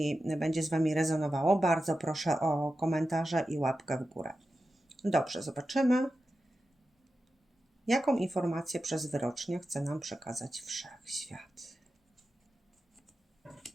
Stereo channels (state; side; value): normal; both; correlation 0.91